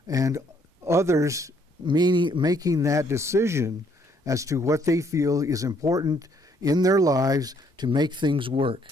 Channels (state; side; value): normal; both; correlation 0.67